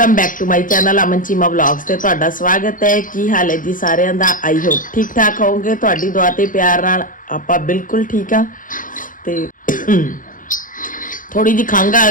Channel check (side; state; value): right; late; 0.39 ms